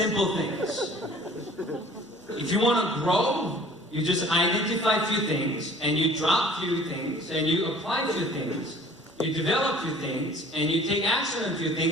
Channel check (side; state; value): both; normal; correlation 0.50